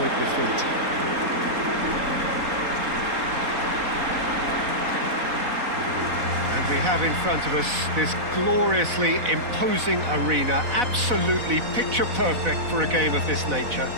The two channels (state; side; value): late; left; 4.0 ms